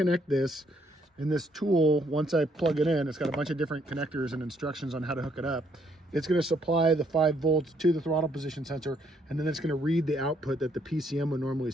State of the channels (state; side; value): normal; both; correlation 0.70